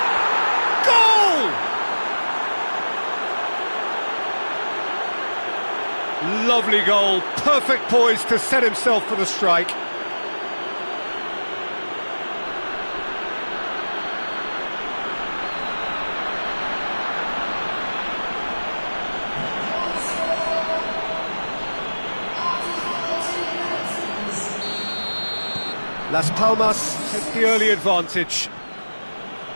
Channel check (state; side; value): inverted; both; correlation -1.00